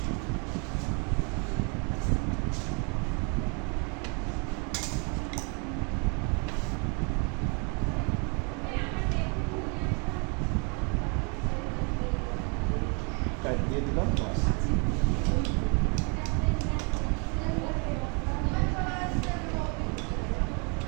টাইট দিয়ে দিলাম, বাস।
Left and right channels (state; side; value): quieter; left; 35.6 dB